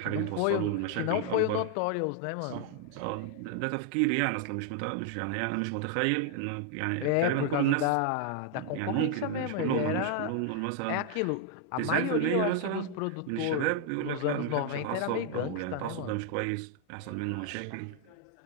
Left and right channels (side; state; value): both; different; correlation 0.00